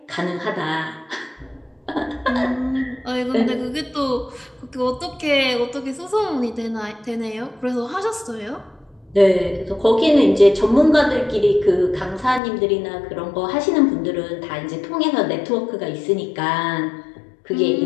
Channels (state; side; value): drops out; right; at 12.4 s